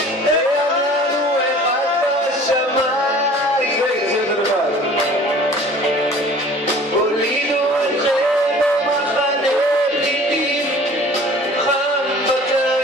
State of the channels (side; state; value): both; normal; correlation 0.48